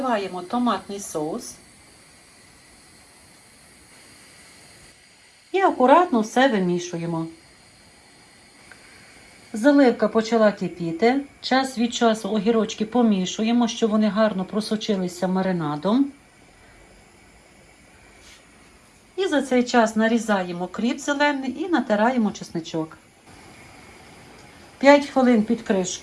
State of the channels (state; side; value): identical; both; correlation 1.00